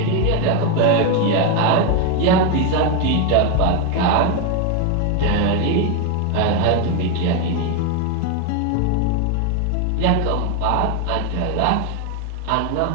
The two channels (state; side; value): different; both; correlation 0.01